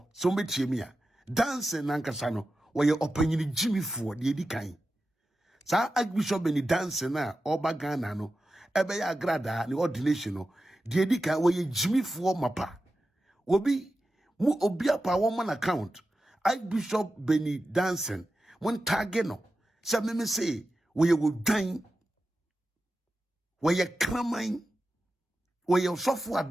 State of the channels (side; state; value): both; normal; correlation 0.92